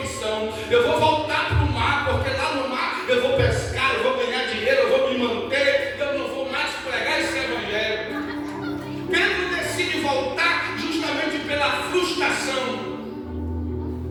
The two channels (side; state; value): both; identical; correlation 1.00